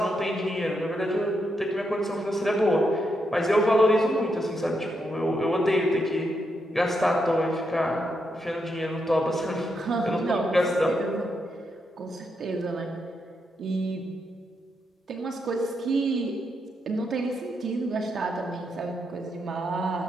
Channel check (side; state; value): both; normal; correlation 0.81